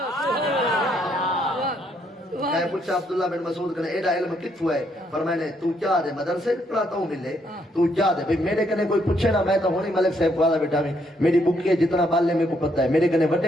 میں پوچھا عبداللہ بن مسعود کہنے ایڈا علم کتھو ہے فرمائے تو کیا دے مدرسے پڑھاتا ہوں ملے تو کیا دے بھئی میرے کنے کوئی پوچھے نا میں تو ہونی ملک صاحب کو آدھا بیٹھا میں میری بکی ہے جتنا بالے میں کو پتہ ہے میرے کنے وڈے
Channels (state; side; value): normal; both; correlation 0.72